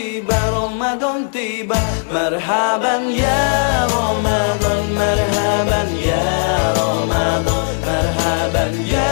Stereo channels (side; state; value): right; silent; digital silence